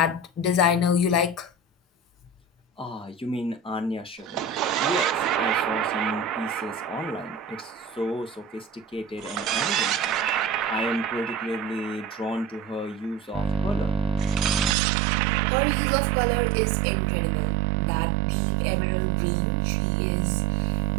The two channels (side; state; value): left; drops out; at 14.8 s